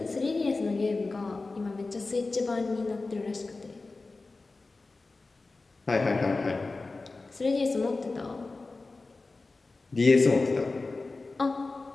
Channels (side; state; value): right; quieter; 3.6 dB